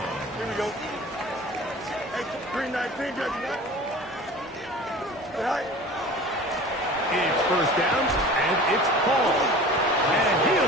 Here we go. Hey, 319, judge. It's first down, and it's Paul. And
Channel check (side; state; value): both; normal; correlation 0.40